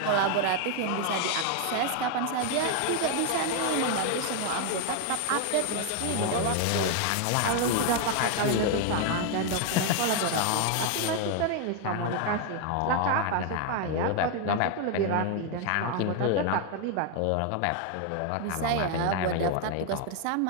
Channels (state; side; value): different; both; correlation 0.01